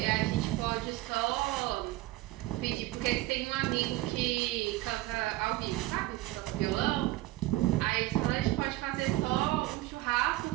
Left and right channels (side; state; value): left; quieter; 17.8 dB